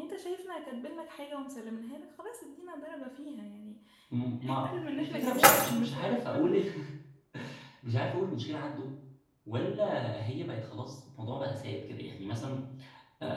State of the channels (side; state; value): both; identical; correlation 1.00